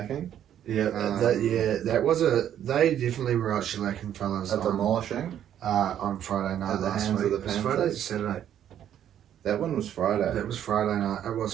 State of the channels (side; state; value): left; quieter; 10.3 dB